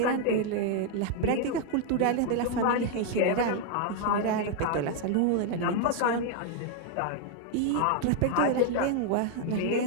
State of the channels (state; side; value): different; both; correlation 0.00